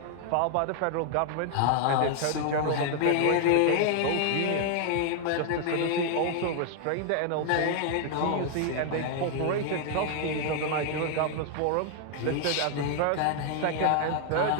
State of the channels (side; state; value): both; different; correlation 0.00